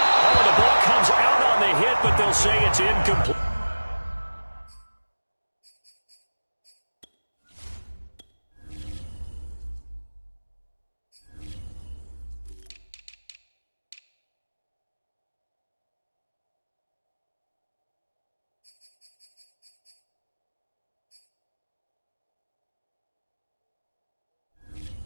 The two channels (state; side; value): inverted; both; correlation -1.00